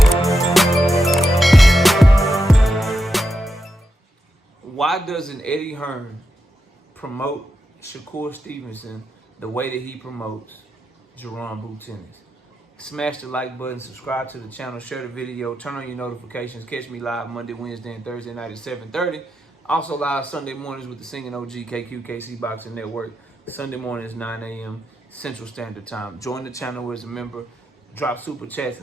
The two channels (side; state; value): both; normal; correlation 0.86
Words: Why doesn't Eddie Hearn promote Shakur Stevenson the way that he promotes Jaron Boots Ennis? Smash the like button, subscribe to the channel, share the video, turn on your notifications. Catch me live Monday, Wednesday, and Thursday night at 7:30. Also live Sunday mornings with the Singing OG KQKC Boxing Network. Sunday mornings 9 a.m. Central Standard Time. Join the channel as a member. Drop super chats